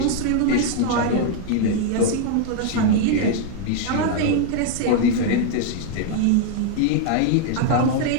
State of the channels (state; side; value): different; both; correlation 0.00